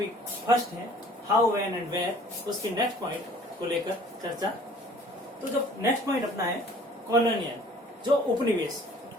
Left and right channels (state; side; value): normal; both; correlation 0.52